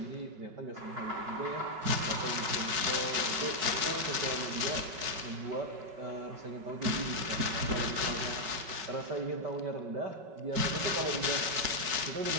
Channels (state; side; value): late; left; 5.3 ms